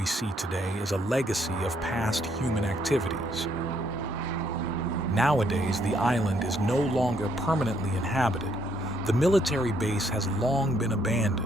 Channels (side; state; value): both; normal; correlation 0.71